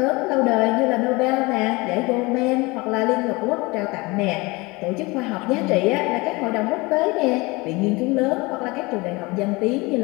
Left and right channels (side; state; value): right; quieter; 24.2 dB